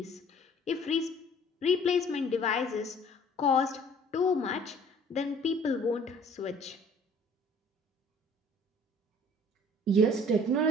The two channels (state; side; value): normal; both; correlation 0.53